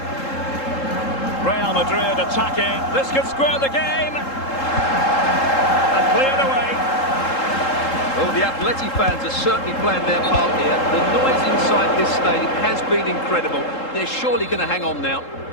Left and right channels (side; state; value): right; late; 3.7 ms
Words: Real Madrid attacking. This could square the game. And cleared away. Well, the Atleti fans are certainly playing their part here. The noise inside this stadium has been incredible. They're surely going to hang on now.